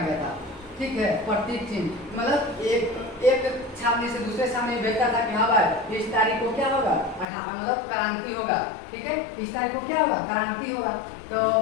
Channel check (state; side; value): drops out; right; at 7.2 s